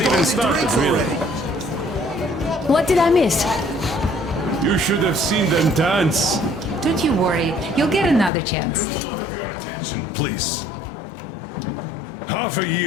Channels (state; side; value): drops out; right; at 8.3 s